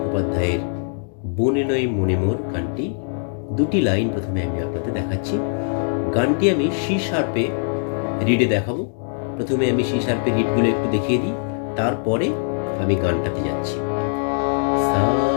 বনে নয় মনে মোর গানটি। দুটি লাইন প্রথমে আমি আপনাদের দেখাচ্ছি। গানটি আমি সি শার্পে রিডে দেখাবো। প্রথমে আমি সি শার্পে রিডগুলো একটু দেখিয়ে দিই, তারপরে আমি গানটাতে যাচ্ছি। সা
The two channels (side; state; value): right; silent; 64 dB below the other